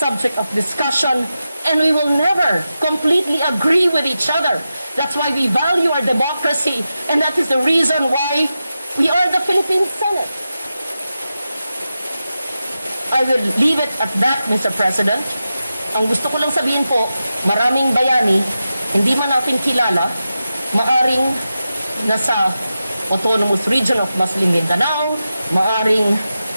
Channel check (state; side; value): inverted; both; correlation -0.91